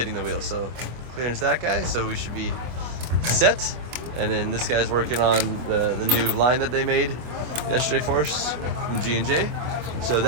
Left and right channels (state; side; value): late; left; 25 ms